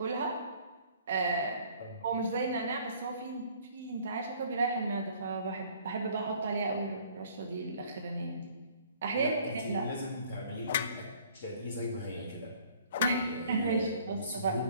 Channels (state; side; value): inverted; both; correlation -0.56